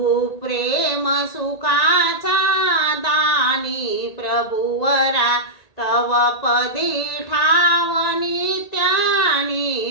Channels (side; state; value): right; late; 1.8 ms